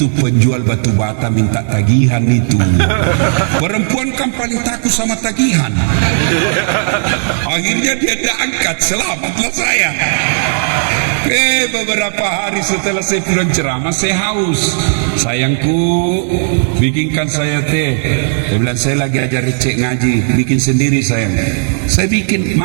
penjual batu bata minta tagihan itu. Perempuan kan paling takut sama tagihan. Akhirnya dia tidak angkat, selamatlah saya. Beberapa hari setelah saya pulang ceramah, saya haus. Sayangku, bikinkan saya teh. Dia bilang saya lagi ajar cek ngaji, bikin sendiri sayang. Saya bikin,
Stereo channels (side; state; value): left; silent; digital silence